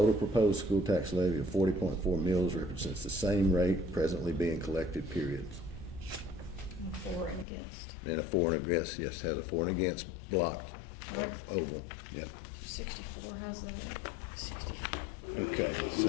proposed school tax levy of 40.4 mills represents the same rate presently being collected, period. For and against. And a for and against, yes, has a for and against blocked, oval, yep. 64, how's that? 64. Okay,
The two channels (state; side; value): drops out; right; at 7.5 s